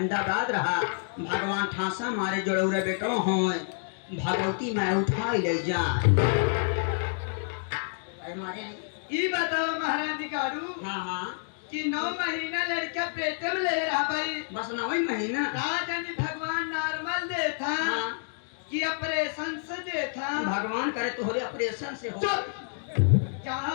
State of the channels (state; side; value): silent; right; digital silence